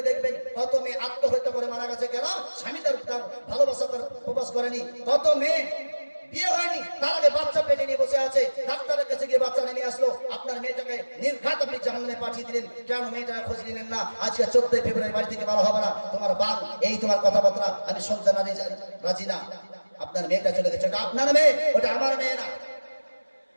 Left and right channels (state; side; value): inverted; both; correlation -1.00